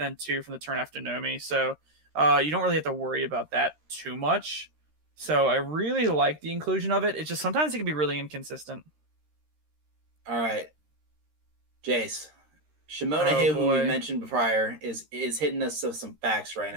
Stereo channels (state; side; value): late; left; 13 ms